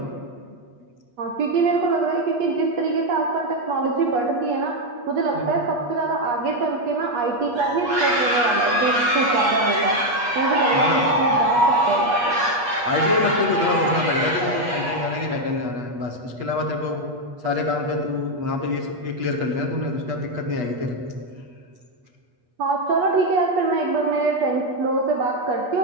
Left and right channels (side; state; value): left; late; 8.3 ms